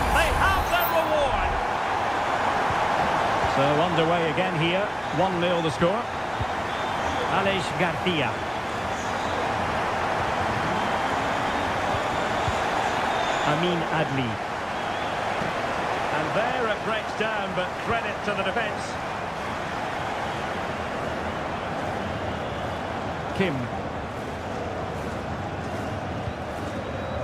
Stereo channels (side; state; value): both; identical; correlation 1.00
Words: They have their reward. So underway again here. 1-0 the score. Alex Garcia. Amin Adli. And there it breaks down, but credit to the defence. Kim.